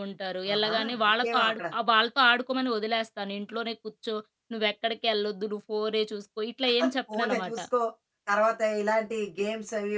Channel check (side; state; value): both; identical; correlation 1.00